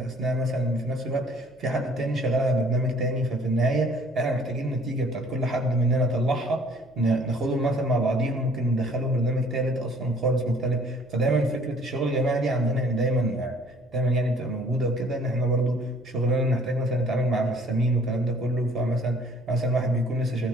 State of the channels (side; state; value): right; noise; hum, 29 dB below the sound